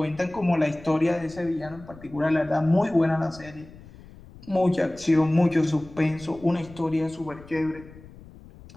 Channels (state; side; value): noise; left; rumble, 20 dB below the sound